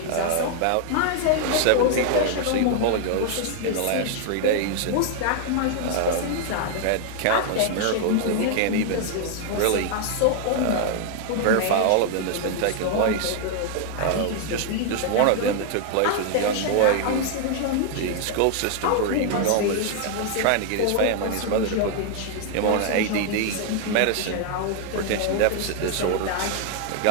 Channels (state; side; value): different; both; correlation 0.00